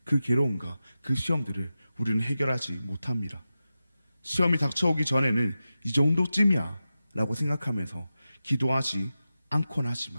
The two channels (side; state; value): both; inverted; correlation -0.93